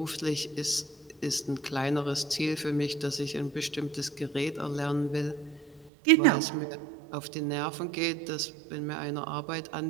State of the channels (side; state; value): left; drops out; at 5.9 s